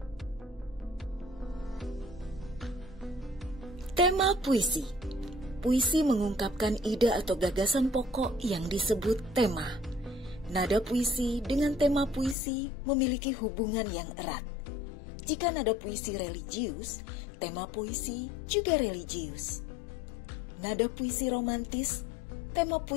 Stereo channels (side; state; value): right; drops out; at 12.4 s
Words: Tema puisi. Puisi mengungkapkan ide atau gagasan pokok yang disebut tema. Nada puisi dengan tema puisi memiliki hubungan yang erat. Jika nada puisi religius, tema puisi juga religius. Nada puisi romantis, tema